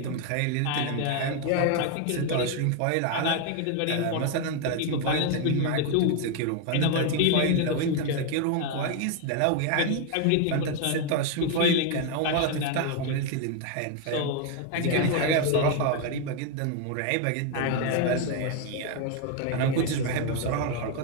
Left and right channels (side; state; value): both; different; correlation 0.01